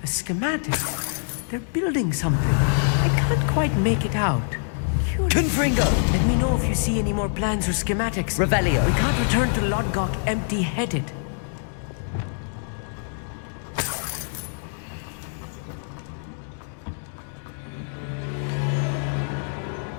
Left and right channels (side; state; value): right; silent; digital silence